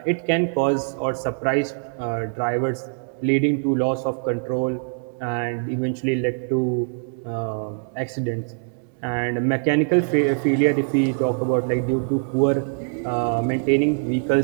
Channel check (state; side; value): silent; left; 63 dB below the other